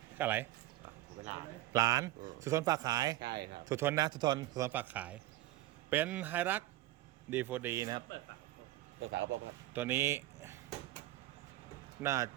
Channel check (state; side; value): quieter; left; 16.2 dB